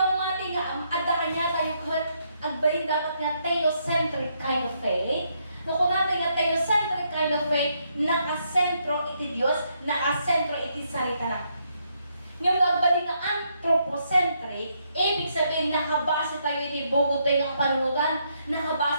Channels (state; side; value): inverted; both; correlation -0.76